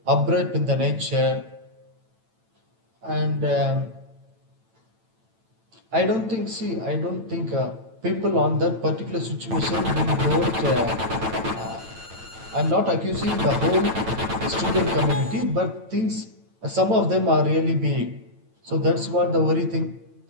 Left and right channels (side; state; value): left; late; 9.0 ms